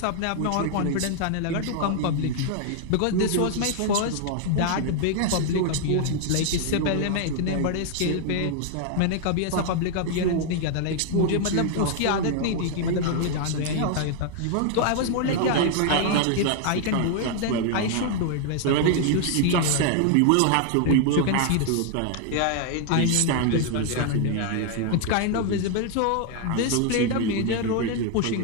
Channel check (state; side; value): different; both; correlation 0.00